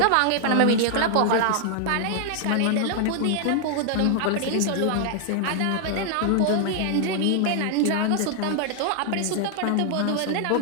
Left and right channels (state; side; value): different; both; correlation 0.00